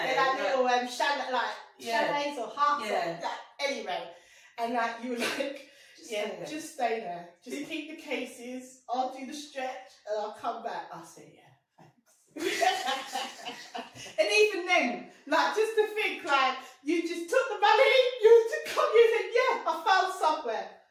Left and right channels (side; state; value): both; identical; correlation 1.00